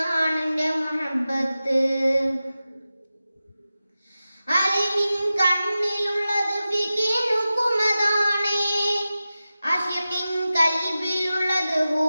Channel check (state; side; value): inverted; both; correlation -0.94